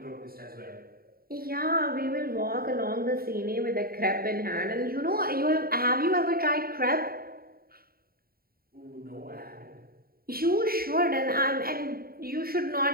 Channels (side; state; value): left; late; 0.43 ms